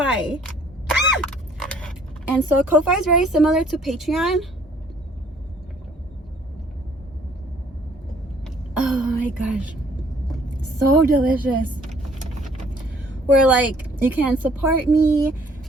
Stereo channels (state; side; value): normal; both; correlation 0.59